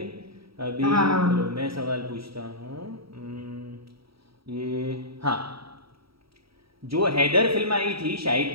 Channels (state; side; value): late; left; 0.75 ms